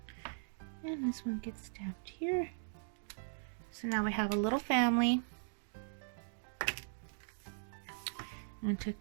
And this one gets stamped here. So now we have a little family. I'm going to take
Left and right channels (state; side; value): silent; left; digital silence